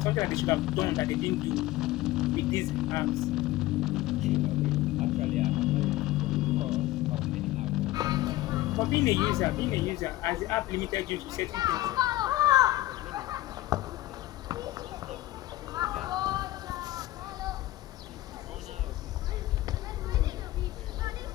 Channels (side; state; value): right; quieter; 16.6 dB